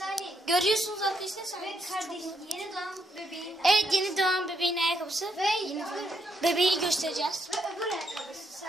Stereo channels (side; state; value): both; normal; correlation 0.77